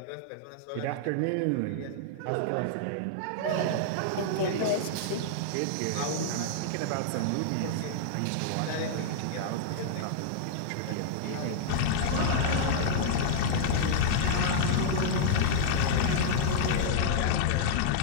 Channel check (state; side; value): different; both; correlation -0.01